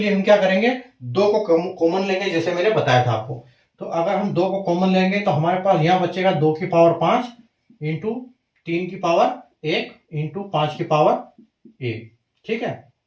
हम क्या करेंगे, 2 को कॉमन लेंगे, जैसे मैंने बताया था आपको। तो अगर हम 2 को कॉमन लेंगे तो हमारे पास यहाँ बचेगा 2 की पावर 5 इंटू 3 की पावर 1 इंटू 5 की पावर 1, ठीक है।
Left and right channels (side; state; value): both; identical; correlation 1.00